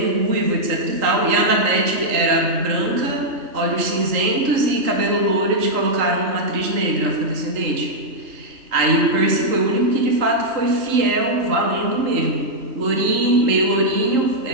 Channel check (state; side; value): late; left; 3.8 ms